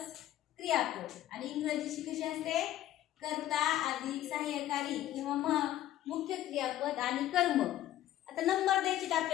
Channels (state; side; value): quieter; right; 13.4 dB